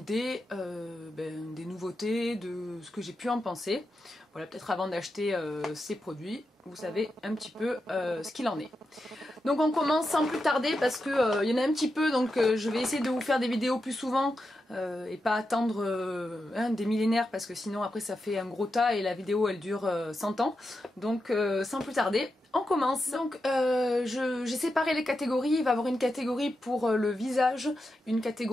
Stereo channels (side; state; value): both; normal; correlation 0.88